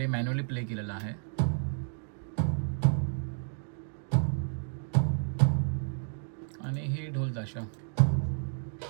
प्ले केलेला आहे. आणि हे ढोल ताशा.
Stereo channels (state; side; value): silent; left; digital silence